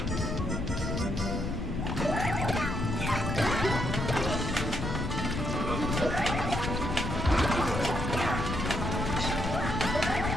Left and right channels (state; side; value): noise; left; rumble, 3 dB below the sound